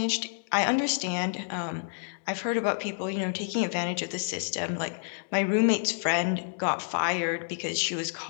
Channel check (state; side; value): silent; right; digital silence